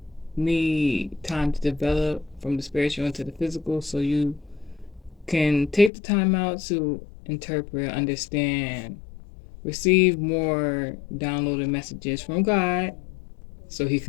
need time to develop from the spiritual into the physical, so you can take the time out to interpret, understand, receive more downloaded messages from God so he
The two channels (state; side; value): drops out; right; at 5.9 s